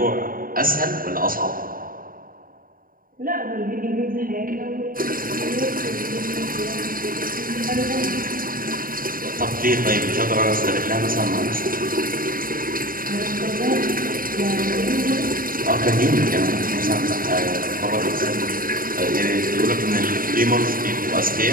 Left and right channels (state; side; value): late; left; 0.41 ms